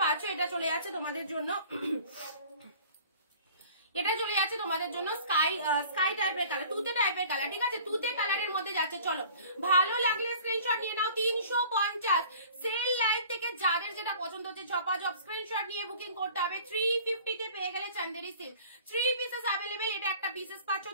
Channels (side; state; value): both; inverted; correlation -0.47